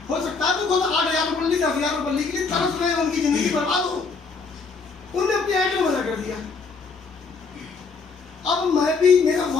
हो सकता है तो खुद 8,000 रुपये 10,000 रुपये के लिए तरस रहे हो, उनकी जिंदगी बर्बाद हो। उनने अपने आइटम मना कर दिया। अब मैं भी, मेरा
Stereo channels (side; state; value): right; quieter; 4.6 dB